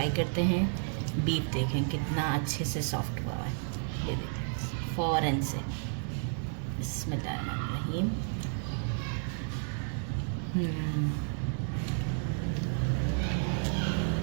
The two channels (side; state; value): left; silent; 57 dB below the other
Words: करते हैं। बीफ देखें कितना अच्छे से सॉफ्ट हुआ है, ये देखें फ़ौरन से। बिस्मिल्लाहिर्रहमानिर्रहीम।